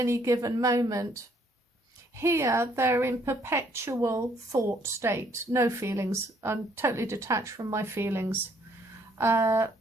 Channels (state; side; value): normal; both; correlation 0.66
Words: given moment. Here, they're in perpetual thought state, no feelings. I'm totally detached from my feelings, very